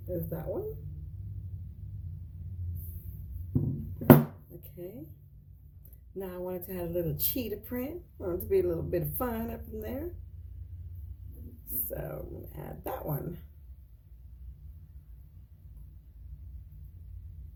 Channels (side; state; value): both; identical; correlation 1.00